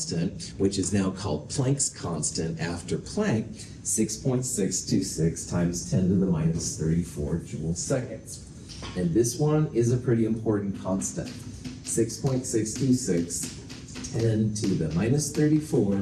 which is now called Planck's constant after Planck, 6.626 times 10 to the minus 34 joule seconds. And this one is a pretty important constant. 6.626, 10 to the minus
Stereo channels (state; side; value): identical; both; correlation 1.00